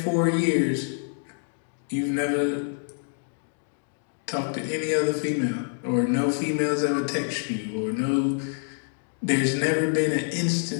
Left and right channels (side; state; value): right; silent; 61 dB below the other